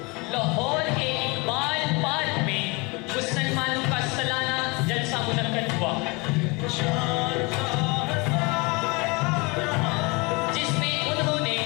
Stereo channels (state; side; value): quieter; right; 27.7 dB